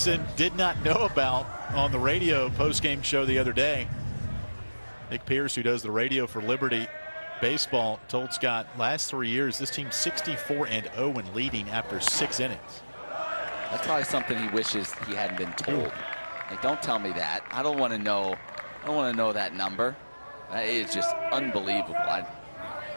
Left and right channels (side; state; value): both; inverted; correlation -1.00